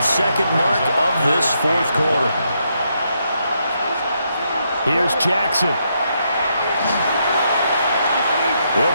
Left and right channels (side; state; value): both; inverted; correlation -0.78